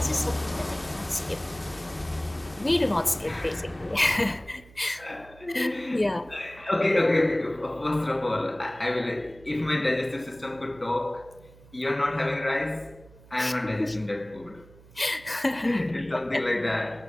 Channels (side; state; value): right; noise; hum, 23 dB below the sound